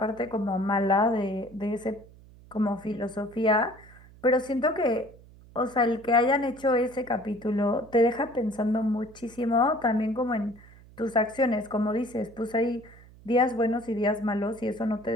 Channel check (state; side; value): noise; right; hum, 23 dB below the sound